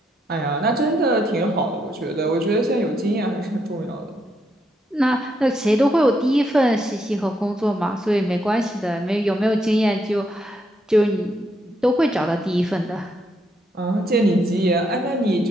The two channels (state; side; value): normal; both; correlation 0.77